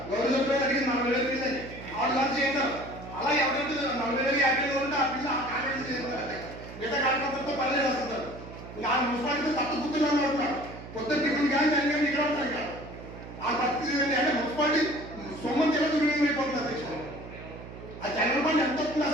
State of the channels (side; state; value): right; noise; hum, 13 dB below the sound